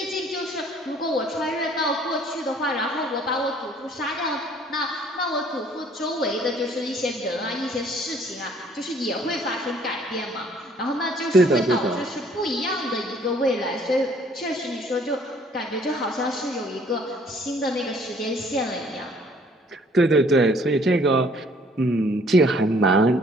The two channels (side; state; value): both; normal; correlation 0.59